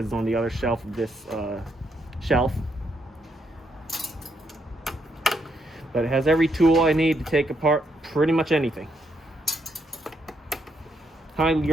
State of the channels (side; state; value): both; normal; correlation 0.77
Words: it's on the other shelf of this shelf. But it has every tool I need to take apart pretty much anything.